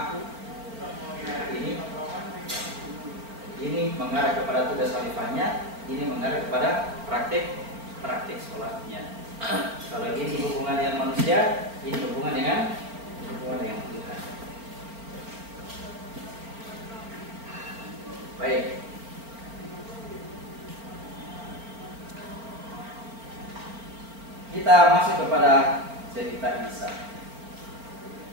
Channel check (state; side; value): late; left; 4.4 ms